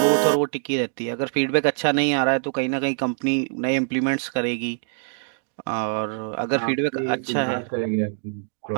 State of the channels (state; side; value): silent; left; 60 dB below the other